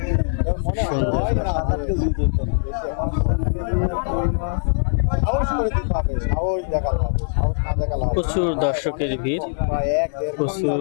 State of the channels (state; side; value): silent; right; digital silence